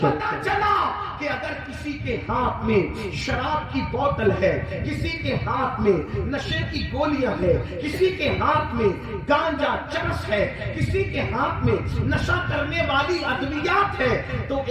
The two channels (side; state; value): both; identical; correlation 1.00